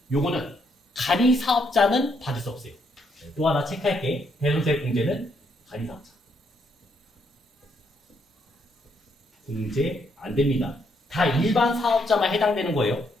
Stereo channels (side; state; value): both; normal; correlation 0.74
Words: 요거는 간이사업자는 받을 수 없어요. 또 하나 체크할게. 대손세 공제는 간이사업자. 공제 안 됩니다. 다 일반 사업자만 해당되는 거예요.